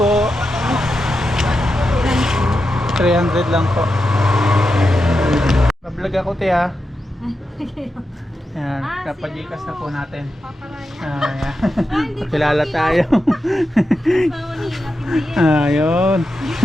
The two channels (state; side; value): normal; both; correlation 0.89